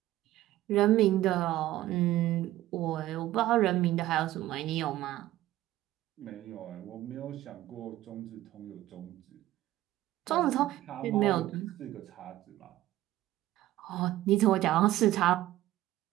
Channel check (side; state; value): left; quieter; 15.2 dB